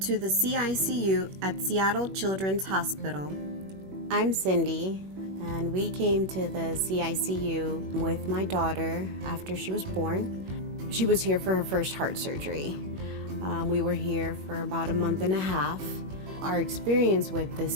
the CICU at Seattle Children's Hospital. I'm Cindy, and we came to the CICU with my daughter after she was born. She was here for her first heart surgery. We were here for about a month and a half. Our experience with the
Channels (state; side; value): late; left; 21 ms